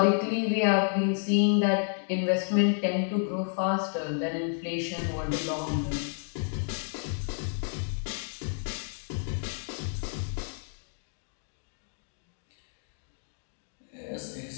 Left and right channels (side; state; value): right; silent; 57 dB below the other